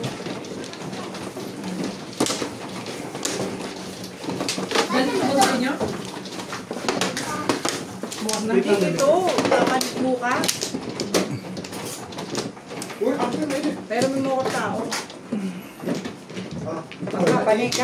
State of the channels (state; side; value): identical; both; correlation 1.00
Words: Ganito ba sa inyo? Ito. Papalit bukas. Uy, ako na yun. Pero may mga tao. Ah, Papalit